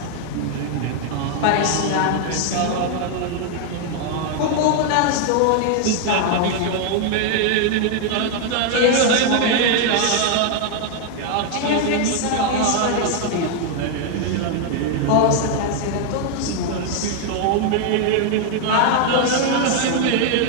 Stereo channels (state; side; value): different; both; correlation 0.00